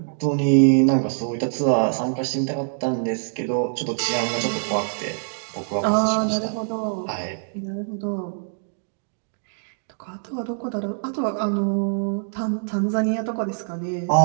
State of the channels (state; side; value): silent; left; digital silence